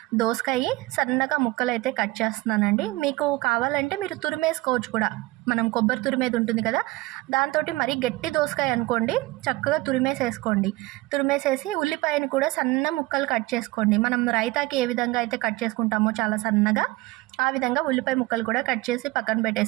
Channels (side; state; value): left; quieter; 20.9 dB